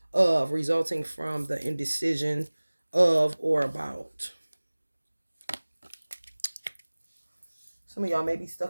of resulting from the indecision of or about. Some of y'all may be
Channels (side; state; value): both; inverted; correlation -1.00